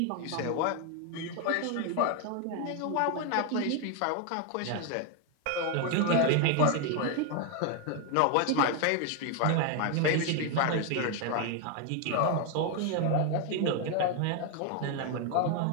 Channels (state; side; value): different; both; correlation 0.00